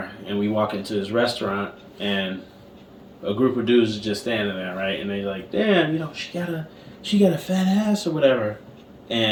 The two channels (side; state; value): both; identical; correlation 1.00